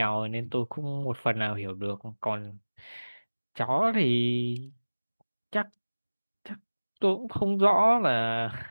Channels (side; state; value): both; inverted; correlation -1.00